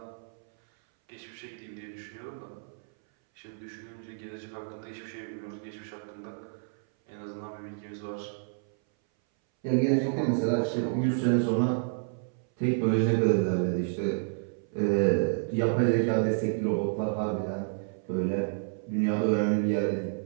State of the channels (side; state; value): left; silent; 58 dB below the other